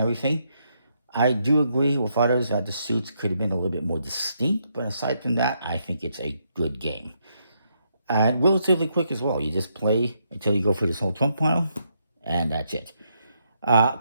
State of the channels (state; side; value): inverted; both; correlation -0.77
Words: I do agree with others that the suits could have been a little bit more distinct, but aside from that, I think it's a good game. And relatively quick as well. You just play until you go for this whole trump pile, and that's it.